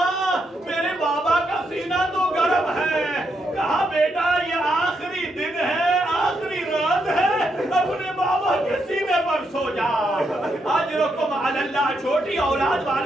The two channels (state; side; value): normal; both; correlation 0.80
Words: میرے بابا کا سینہ تو گرم ہے۔ کہا بیٹا یہ آخری دن ہے، آخری رات ہے، اپنے بابا کے سینے پر سو جا۔ اجرکم علی اللہ۔ چھوٹی اولاد